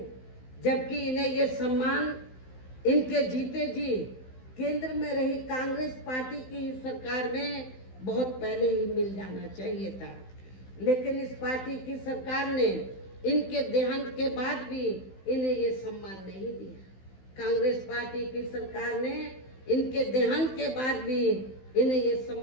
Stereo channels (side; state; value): right; late; 16 ms